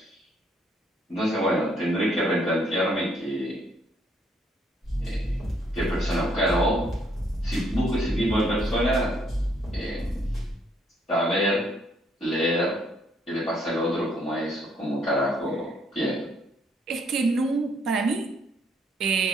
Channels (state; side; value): normal; both; correlation 0.68